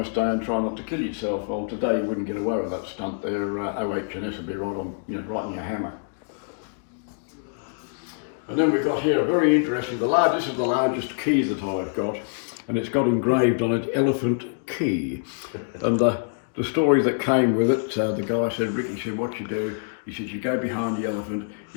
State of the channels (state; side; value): silent; right; digital silence